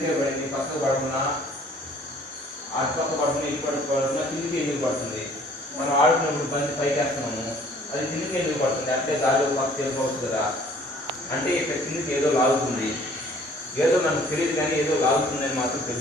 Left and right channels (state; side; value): normal; both; correlation 0.55